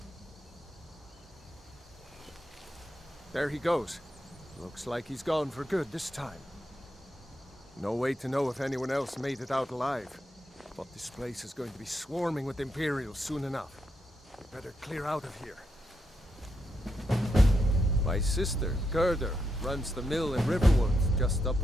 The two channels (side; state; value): both; normal; correlation 0.82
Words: There he goes. Looks like he's gone for good this time. No way to know if anyone else made it out alive. But this place is going to be swarming with Imperials soon enough. We better clear out of here. My sister, Gerda, runs the mill in Riverwood, just up